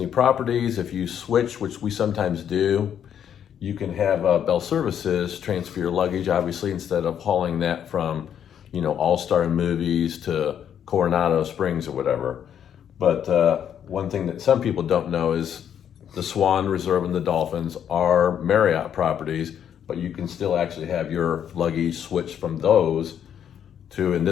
properties, if you switch, which we sometimes do, you can have Bell Services transfer your luggage, obviously, instead of hauling that from, All-Star Movies to Coronado Springs or whatever. But one thing that some people don't know is the Swan Reserve and the Dolphins are Marriott properties, but you can still actually have your luggage switched from those to, in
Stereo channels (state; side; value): quieter; right; 9.1 dB